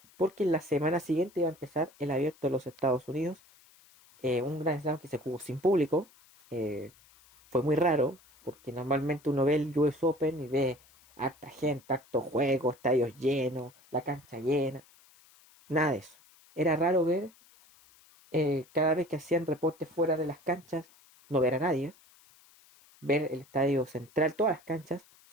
porque la semana siguiente iba a empezar el abierto de los Estados Unidos, un Grand Slam que se jugó sin público. Fue muy raro, porque normalmente uno ve el US Open y ve harta gente, harto juego, estadios llenos, la cancha llena. Nada de eso. Era raro ver, cada vez que hacían reportes fuera de las canchas, no ver a nadie. Ver el estadio central, todas las canchas,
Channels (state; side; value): noise; left; hiss, 28 dB below the sound